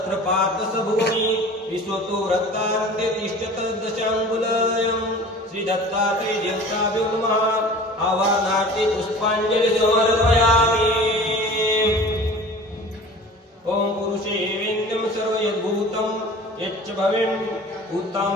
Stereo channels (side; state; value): both; normal; correlation 0.42